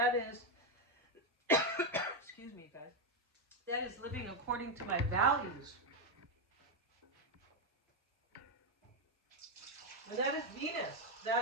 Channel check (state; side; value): normal; both; correlation 0.05